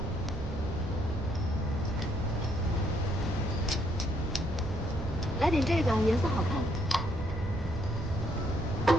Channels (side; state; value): right; noise; rumble, 8 dB below the sound